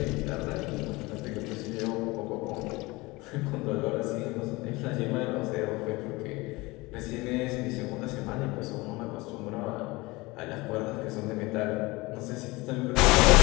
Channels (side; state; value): right; quieter; 22.5 dB